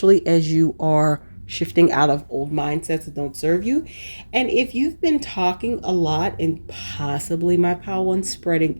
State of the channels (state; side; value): inverted; both; correlation -1.00